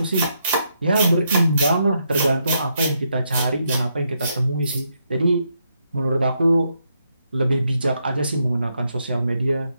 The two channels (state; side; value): inverted; both; correlation -0.79